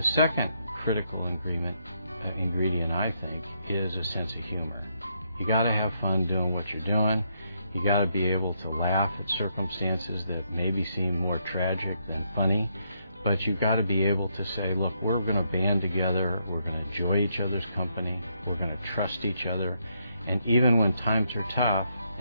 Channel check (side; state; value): both; inverted; correlation -0.77